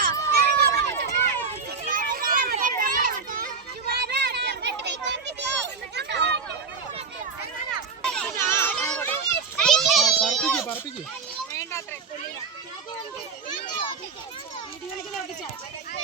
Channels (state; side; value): quieter; left; 5.3 dB